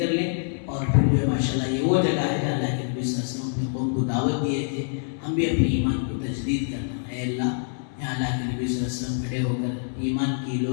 لیں، اور پھر جو ہے ماشاءاللہ یہ وہ جگہ ہے جہاں اللہ کے نبی صلی اللہ علیہ وسلم اپنے قوم کو دعوت دیے تھے، ہم بھی اپنے ایمان کو تجدید کرنا۔ اے اللہ یہاں اللہ کے نبی صلی اللہ علیہ وسلم کھڑے ہو کر ایمان کی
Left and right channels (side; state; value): right; silent; 61 dB below the other